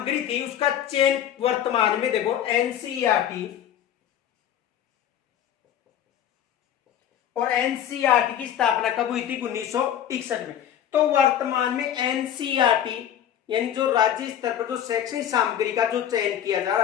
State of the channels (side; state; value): right; quieter; 10.2 dB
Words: थी उसका चयन वर्तमान में देखो एनसीईआरटी और एनसीईआरटी की स्थापना कब हुई थी? 1961 में। तो वर्तमान में एनसीईआरटी यानी जो राज्य स्तर पर जो शैक्षणिक सामग्री का जो चयन किया जा